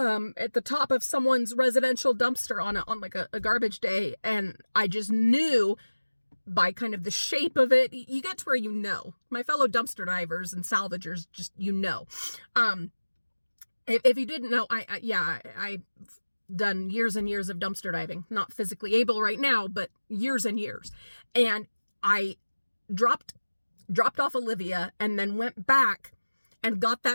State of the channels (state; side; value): inverted; both; correlation -1.00